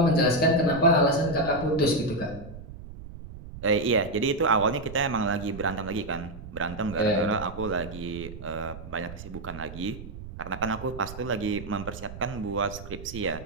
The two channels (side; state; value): right; noise; rumble, 13 dB below the sound